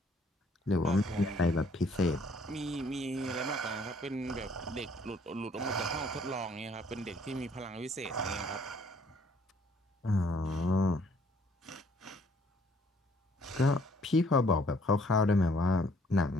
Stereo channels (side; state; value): both; normal; correlation 0.62